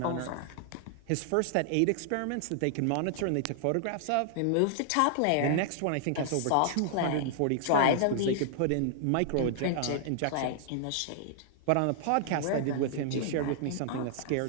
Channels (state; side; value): different; both; correlation -0.01